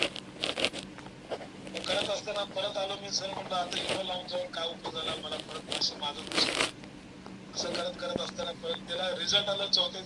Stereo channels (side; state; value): both; identical; correlation 1.00